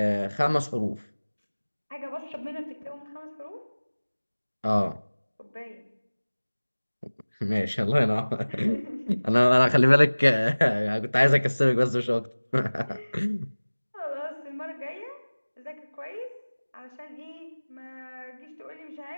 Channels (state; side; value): inverted; both; correlation -1.00